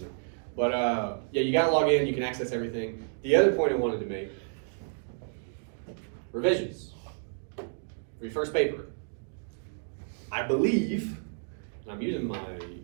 But yeah, you gotta log in, you can access everything. The other point I wanted to make, revisions. For your first paper, I believe, and I'm using my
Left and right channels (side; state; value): left; silent; digital silence